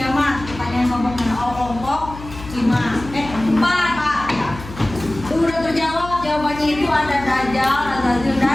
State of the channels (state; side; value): noise; left; hum, 14 dB below the sound